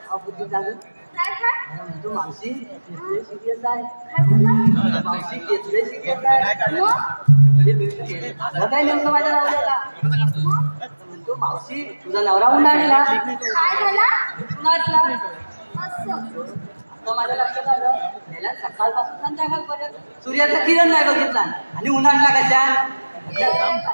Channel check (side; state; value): both; inverted; correlation -1.00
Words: म्हणतो मावशी केसले सिरियस आहे मावशी केसले सिरियस आहे काय नेमकं माझ्या नवऱ्याला म्हणतो मावशी तुझा नवरा उन्हाळला आता माझ्या लक्षात आलं गेल्या सकाळपासून संध्याकाळपर्यंत सूर्याचा किरण नाही बघितला आणि उन्हाळला कशा